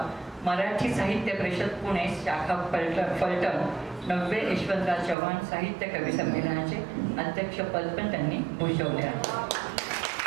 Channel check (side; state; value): left; drops out; at 5.2 s